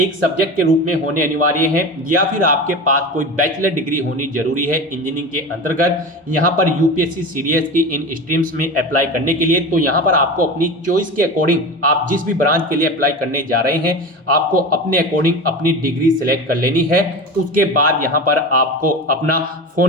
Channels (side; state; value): both; normal; correlation 0.28